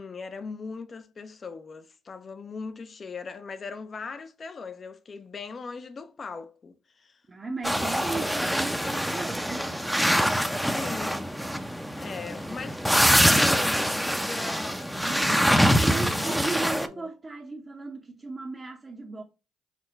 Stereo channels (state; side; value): normal; both; correlation 0.95